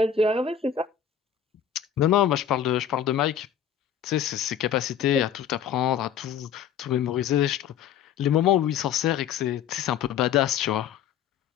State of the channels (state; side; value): quieter; right; 8.7 dB